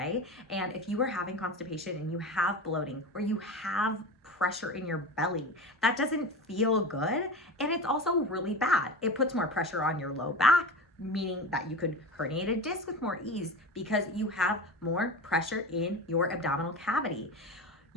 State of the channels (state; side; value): normal; both; correlation 0.28